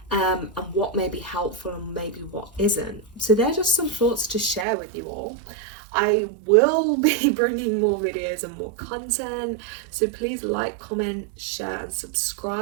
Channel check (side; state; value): left; drops out; at 4.7 s